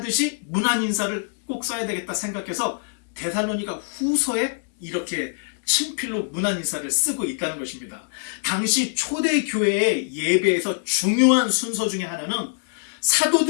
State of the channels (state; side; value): silent; right; digital silence